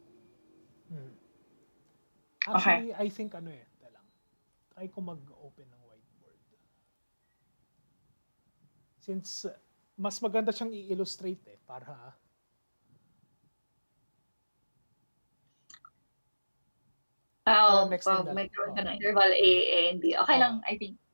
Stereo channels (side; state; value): both; inverted; correlation -1.00